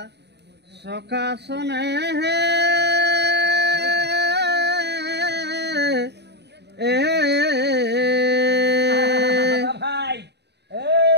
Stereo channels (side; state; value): left; late; 0.49 ms